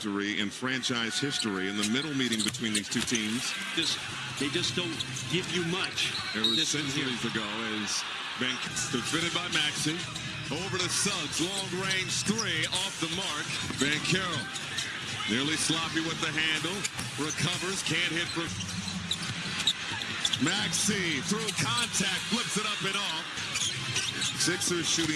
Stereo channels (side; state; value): both; identical; correlation 1.00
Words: in franchise history in the middle meeting between these two teams. They just don't give you much. It was centuries ago as Bank defended by Maxey. Over to Suggs, long range three off the mark. Banchero nearly sloppy with the handle. Recovers, can't hit for Maxey through contact, flips it up and off. Sixers